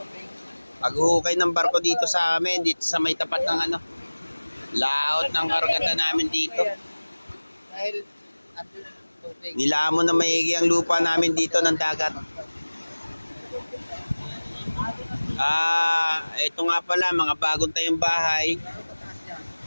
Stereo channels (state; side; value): inverted; both; correlation -1.00